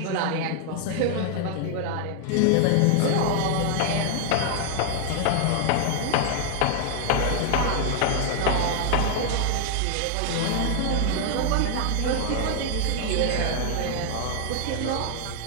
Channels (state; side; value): different; both; correlation 0.00